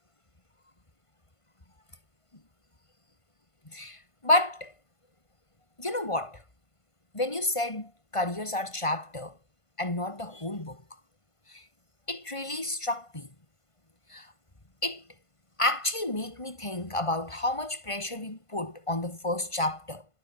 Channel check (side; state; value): right; late; 1.5 ms